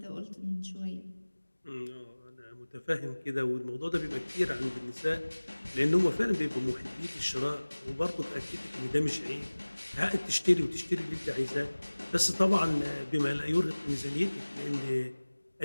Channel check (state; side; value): inverted; both; correlation -1.00